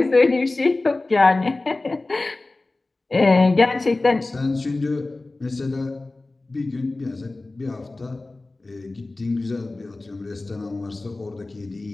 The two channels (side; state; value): right; quieter; 3.1 dB